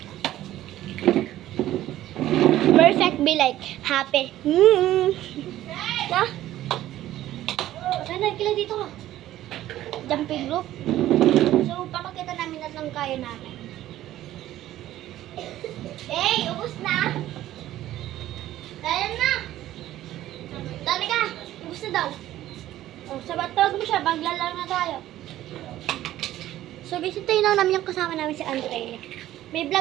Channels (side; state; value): left; quieter; 13.9 dB